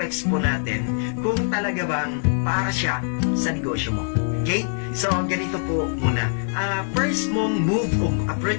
po natin kung talaga bang para siya sa negosyo mo. Okay? So, ganito po muna. First mong move o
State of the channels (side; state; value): right; silent; digital silence